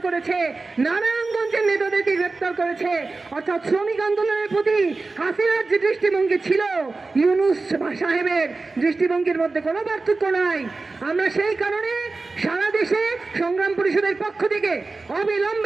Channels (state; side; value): quieter; left; 3.7 dB